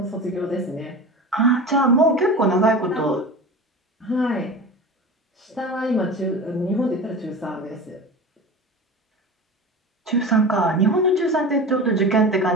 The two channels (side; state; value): both; normal; correlation 0.31